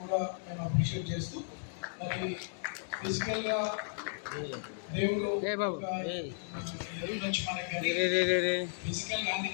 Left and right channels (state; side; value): silent; right; digital silence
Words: కూడా మేము అప్రిషియేట్ చేస్తూ, మరి ఫిజికల్గా దేవుడు నుంచి మనకి ఫిజికల్